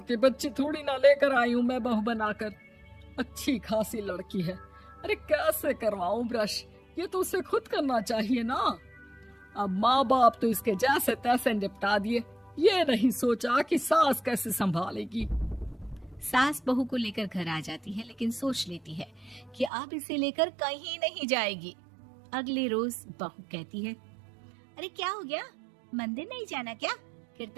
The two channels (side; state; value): left; drops out; at 19.7 s